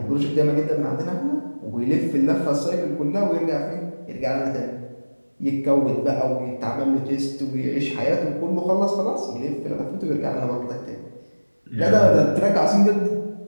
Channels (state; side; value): inverted; both; correlation -1.00